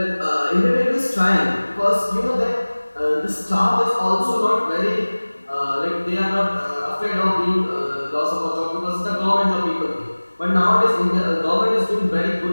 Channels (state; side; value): inverted; both; correlation -1.00